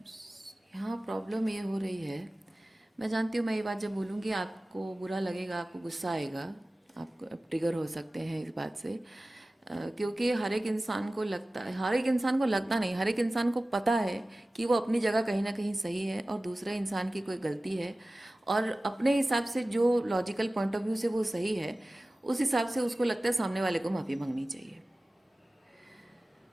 यहाँ प्रॉब्लम ये हो रही है, मैं जानती हूँ मैं ये बात जब बोलूँगी आपको बुरा लगेगा, आपको गुस्सा आएगा, आप ट्रिगर हो सकते हैं इस बात से, क्योंकि हर एक इंसान को लगता है, हर एक इंसान को लगता नहीं, हर एक इंसान को पता है कि वो अपनी जगह कहीं ना कहीं सही है और दूसरे इंसान की कोई गलती है, और अपने हिसाब से जो लॉजिकल पॉइंट ऑफ व्यू से वो सही है, उस हिसाब से उसको लगता है सामने वाले को माफ़ी मांगनी चाहिए।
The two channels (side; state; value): both; normal; correlation 0.97